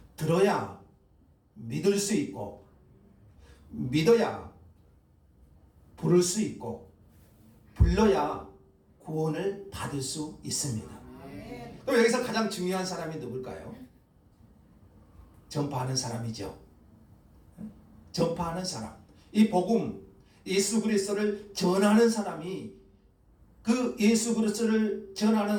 들어야 믿을 수 있고, 믿어야 부를 수 있고, 불러야 구원을 받을 수 있습니다. 아멘. 또 여기서 가장 중요한 사람이 누굴까요? 전파하는 사람이죠. 전파하는 사람. 이 복음, 예수 그리스도를 전하는 사람이 그 예수 그리스도를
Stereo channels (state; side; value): identical; both; correlation 1.00